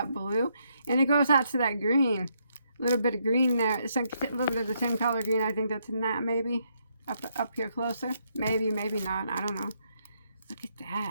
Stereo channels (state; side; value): inverted; both; correlation -0.75